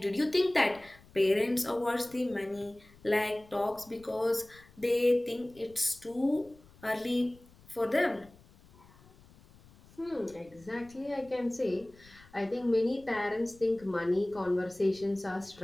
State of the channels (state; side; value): noise; left; rumble, 25 dB below the sound